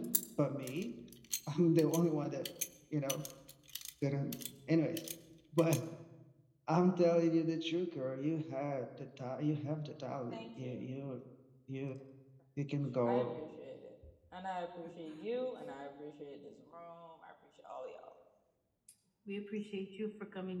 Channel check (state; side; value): identical; both; correlation 1.00